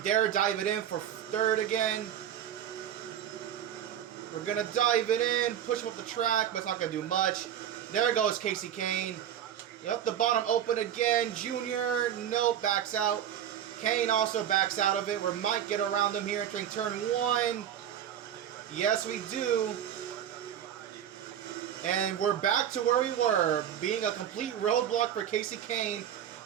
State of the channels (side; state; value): left; quieter; 10.1 dB